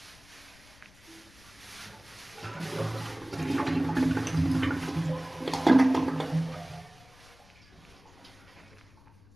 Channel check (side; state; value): left; noise; rumble, 26 dB below the sound